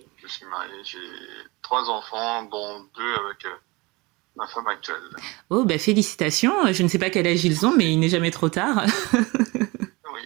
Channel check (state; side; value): quieter; left; 24.4 dB